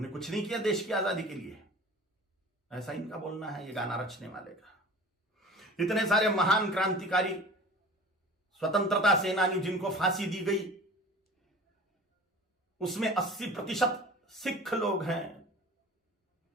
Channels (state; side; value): normal; both; correlation 0.41